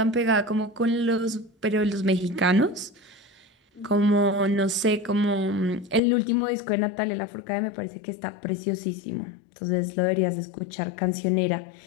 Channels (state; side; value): drops out; right; at 6.0 s